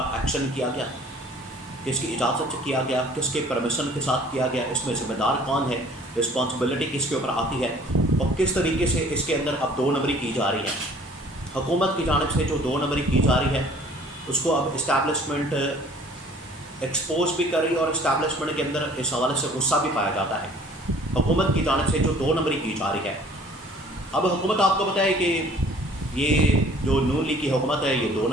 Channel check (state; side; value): normal; both; correlation 0.52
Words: एक्शन किया गया, किसकी इजाज़त से किया गया, किसके परमिशन के साथ किया गया, इसमें ज़िम्मेदार कौन है, रिस्पॉन्सिबिलिटी किसके ऊपर आती है और किस तरीके से इसके अंदर अब 2 नंबरी की जा रही है। हुकूमत की जानिब से जो 2 नंबरी की जा रही है उसको अब इस्टेब्लिशमेंट एक्सपोज भी कर रही है और इस्टेब्लिशमेंट के अंदर इस हवाले से गुस्सा भी पाया जाता है हुकूमत की जानिब से जो 2 नंबरी की जा रही है। अब हुकूमत आपको पता है कि ये जो नून लीग की हुकूमत है, ये 2